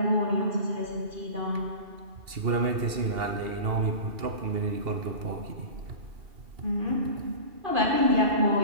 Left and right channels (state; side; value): late; left; 2.8 ms